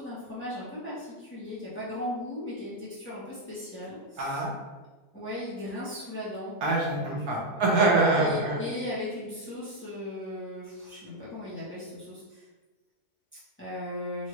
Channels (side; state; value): both; normal; correlation 0.01